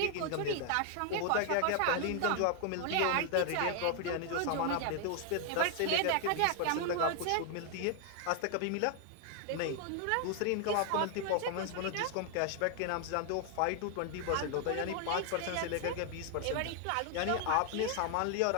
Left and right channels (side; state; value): both; different; correlation 0.00